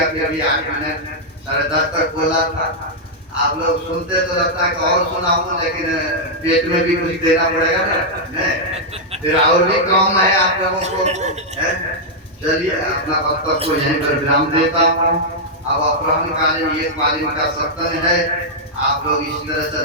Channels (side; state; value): both; normal; correlation -0.06